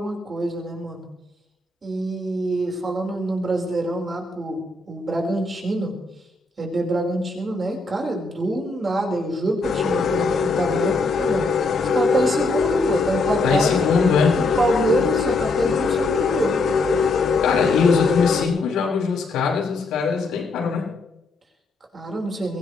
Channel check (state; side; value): quieter; right; 3.1 dB